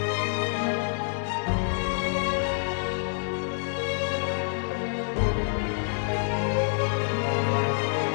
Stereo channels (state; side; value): silent; right; digital silence